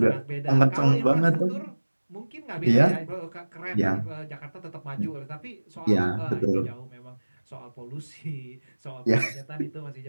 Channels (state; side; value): inverted; both; correlation -1.00